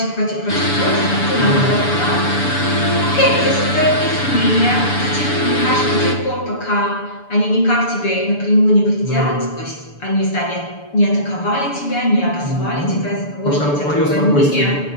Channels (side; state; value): right; late; 6.9 ms